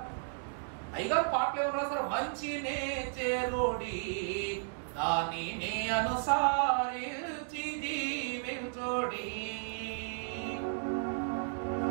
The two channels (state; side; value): silent; left; digital silence